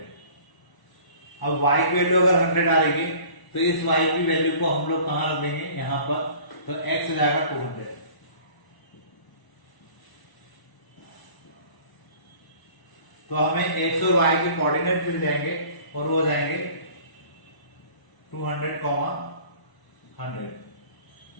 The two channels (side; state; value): right; late; 1.0 ms